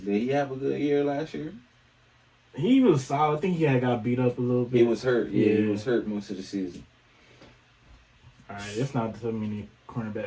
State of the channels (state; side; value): identical; both; correlation 1.00